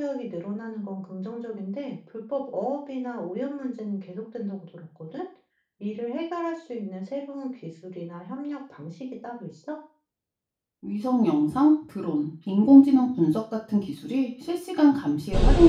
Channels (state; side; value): identical; both; correlation 1.00